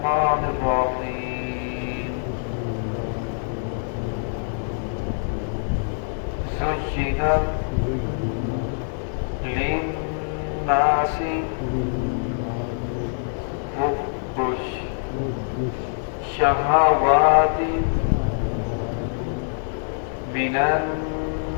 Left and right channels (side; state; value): right; silent; digital silence